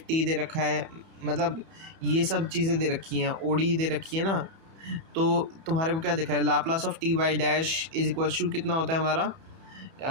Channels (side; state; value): left; late; 31 ms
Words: टी दे रखा है, मतलब ये सब चीज़ें दे रखी हैं, ओडी दे रखी है ना, तो तुम्हारे को क्या दिखा है, Laplace of T Y dash is equal to कितना होता है हमारा